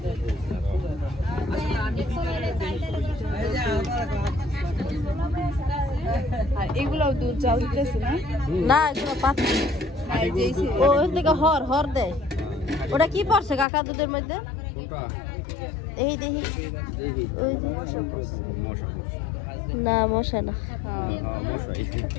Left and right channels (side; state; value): right; drops out; at 13.7 s